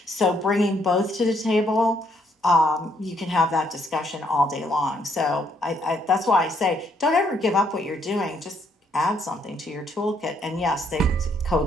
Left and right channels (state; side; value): normal; both; correlation 0.71